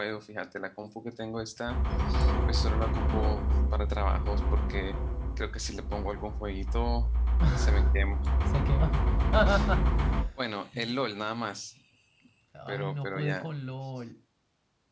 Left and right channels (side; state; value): both; identical; correlation 1.00